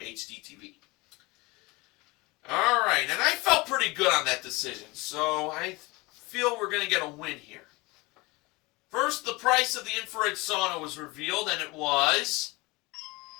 TV. All right, and I felt pretty good on that decision, so I feel we're going to get a win here. First, the price of the infrared sauna was revealed, and it was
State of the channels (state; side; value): quieter; right; 23.8 dB